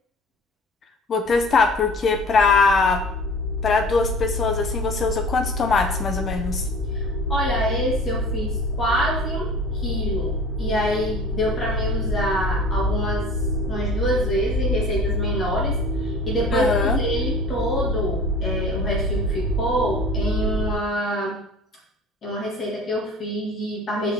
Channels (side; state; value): both; normal; correlation 0.42